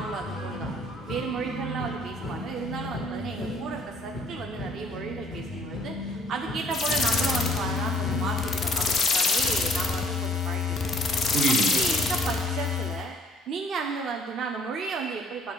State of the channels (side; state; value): both; normal; correlation 0.59